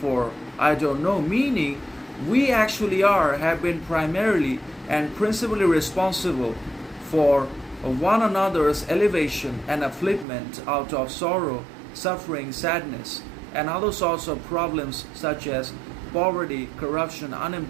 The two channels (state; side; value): drops out; left; at 10.2 s